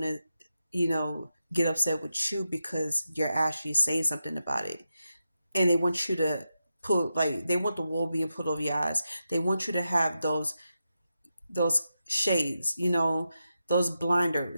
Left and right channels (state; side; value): inverted; both; correlation -0.89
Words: to, get upset with you because you're actually saying something about it. And they want you to put, like, they want the wool being put over your eyes. They want you to have those shades, those